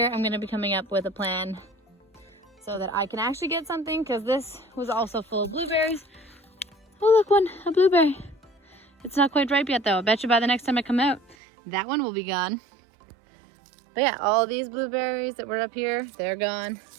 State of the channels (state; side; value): drops out; left; at 11.4 s